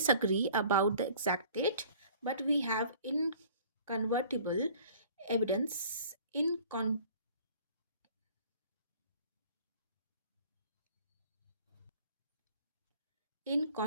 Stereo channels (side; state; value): both; inverted; correlation -0.50